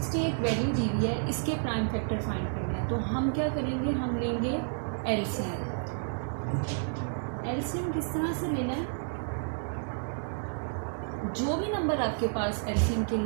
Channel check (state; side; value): silent; left; digital silence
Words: एक वैल्यू दी हुई है, इसके प्राइम फैक्टर फाइंड करने हैं। तो हम क्या करेंगे, हम लेंगे एलसीएम। एलसीएम किस तरह से लेना है, जो भी नंबर आपके पास एलसीएम के